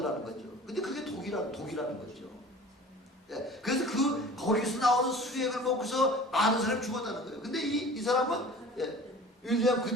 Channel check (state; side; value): normal; both; correlation 0.42